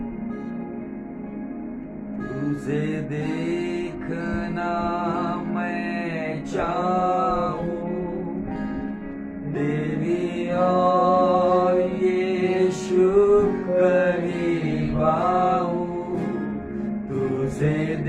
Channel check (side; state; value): both; identical; correlation 1.00